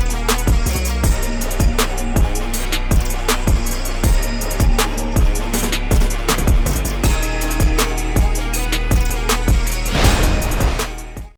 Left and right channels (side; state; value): both; identical; correlation 1.00